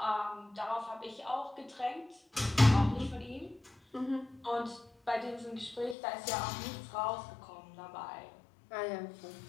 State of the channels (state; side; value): drops out; right; at 6.0 s